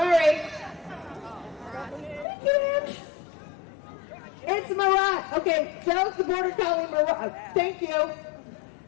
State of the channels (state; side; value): drops out; right; at 2.2 s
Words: It's Mirage. Okay, Joe's the border collie Mirage. Thank you.